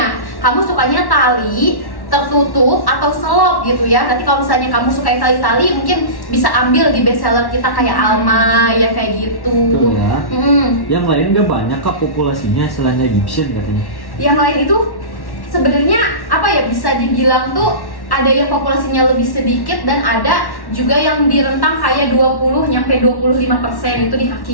Kamu sukanya tali, tertutup atau selop gitu ya. Nanti kalau misalnya kamu suka yang tali-tali mungkin bisa ambil di bestseller kita kayak Alma ya kayak gitu. Betul ya. Mm. Yang lain gak banyak kak populasinya selain Egyptian katanya. Yang lain itu sebenarnya apa ya, bisa dibilang tuh ada yang populasinya lebih sedikit dan ada juga yang di rentang kayak 20 nyampe 25% itu di kaki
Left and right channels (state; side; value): late; right; 1.1 ms